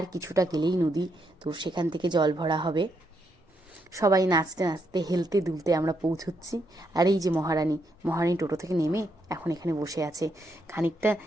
কিছুটা গেলেই নদী। তো সেখান থেকে জল ভরা হবে। সবাই নাচতে নাচতে, হেলতে দুলতে আমরা পৌঁছচ্ছি। আর এই যে মহারানী টোটো থেকে নেমে এখন এখানে বসে আছে। খানিকটা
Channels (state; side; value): normal; both; correlation 0.78